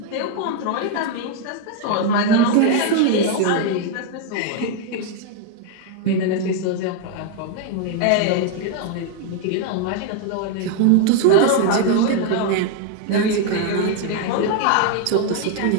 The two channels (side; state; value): both; different; correlation 0.00